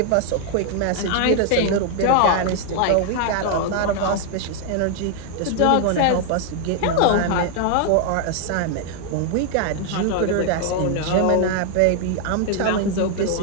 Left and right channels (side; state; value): both; different; correlation 0.00